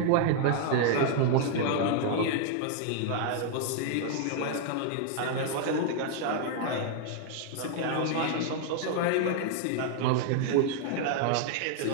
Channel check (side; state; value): both; different; correlation 0.00